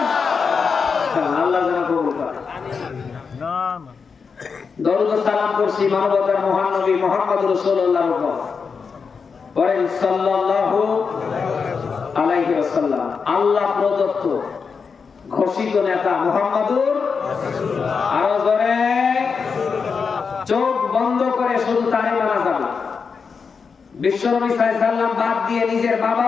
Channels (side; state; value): right; quieter; 5.5 dB